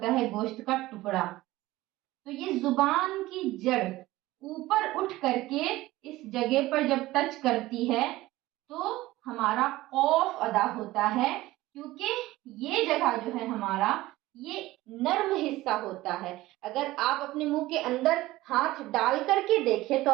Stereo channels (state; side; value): quieter; left; 17.7 dB